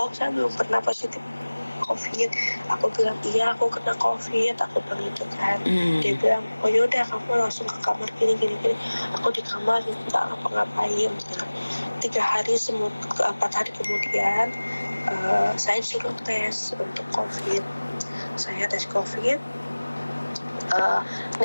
saya belum pernah positif COVID. Aku bilang iya aku kena COVID, aku bilang itu kan. Dia bilang oh yaudah kamu langsung ke kamar gini. Aku di kamar nggak ngapa-ngapain. 4 hari kemudian saya suruh tes untuk COVID. Saya tes COVID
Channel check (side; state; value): both; inverted; correlation -1.00